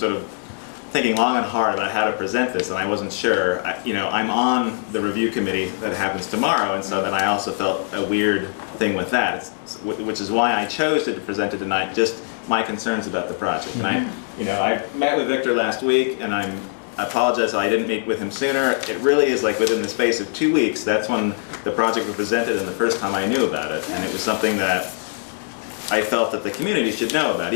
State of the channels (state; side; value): silent; right; digital silence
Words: of thinking long and hard about how to present this, and I wasn't sure. You know, I'm on the review committee that happens tomorrow, and so then I also felt a weird thing with that, which is why I chose to present it tonight, just my concerns about the project. And I met with Victor last week, and I apologize I didn't meet with him sooner. It really is like within the space of 2 weeks, that's when the project was presented and the first time I knew about it, and it was something that I felt that the community should know about.